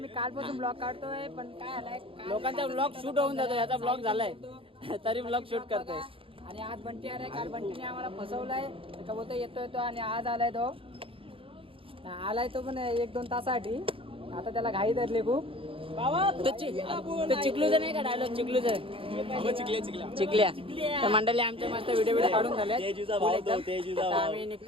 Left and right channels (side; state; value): left; late; 0.26 ms